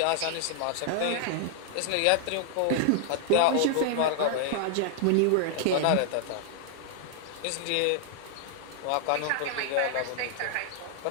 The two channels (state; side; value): different; both; correlation 0.00